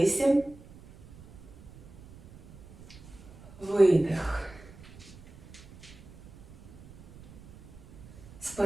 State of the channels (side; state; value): right; noise; rumble, 20 dB below the sound